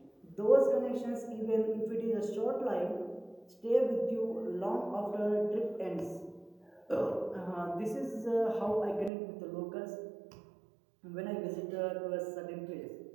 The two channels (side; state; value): left; drops out; at 9.1 s